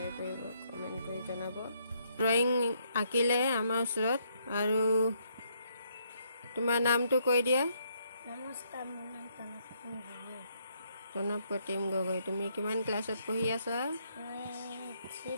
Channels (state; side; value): inverted; both; correlation -0.73